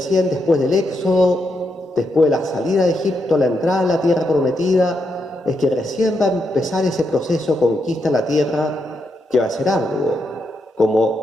después del Éxodo, después de la salida de Egipto, la entrada a la tierra prometida, es que recién va a empezar ese proceso de conquista de la tierra que va a ser arduo,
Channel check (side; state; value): both; normal; correlation 0.82